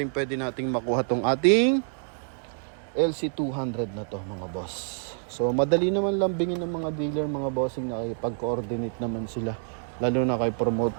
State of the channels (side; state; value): left; silent; 60 dB below the other